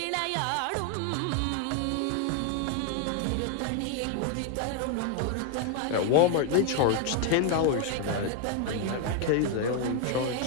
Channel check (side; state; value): both; different; correlation 0.00